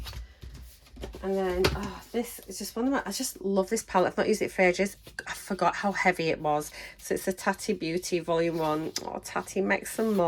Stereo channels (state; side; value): identical; both; correlation 1.00